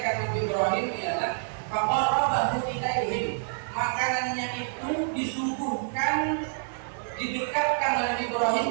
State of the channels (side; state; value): left; silent; 60 dB below the other